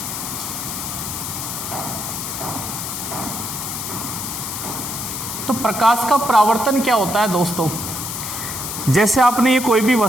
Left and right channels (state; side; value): noise; left; hiss, 5 dB below the sound